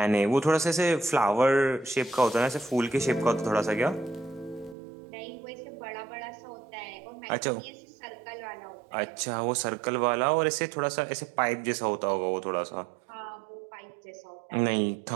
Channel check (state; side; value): drops out; left; at 4.8 s